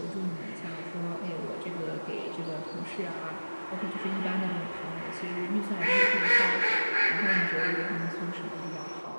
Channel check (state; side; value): inverted; both; correlation -1.00